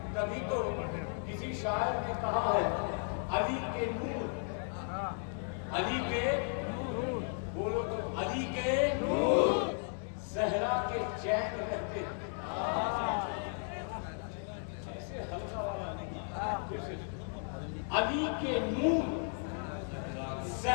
کبھی تو کسی شاعر نے کہا ہے علی کے نور، علی کے نور، بولو تو علی کے نور، زہرا کے چین رہتے ہیں۔ ایسے ہلکا والا نہیں، علی کے نور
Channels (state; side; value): silent; right; 54 dB below the other